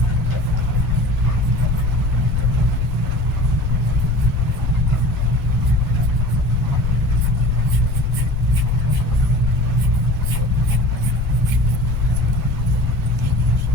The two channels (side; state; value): both; normal; correlation 0.40